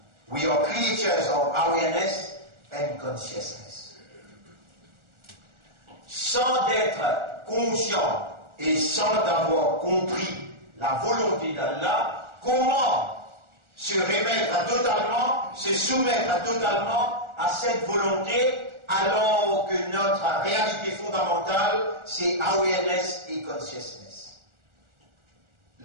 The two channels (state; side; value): late; left; 1.4 ms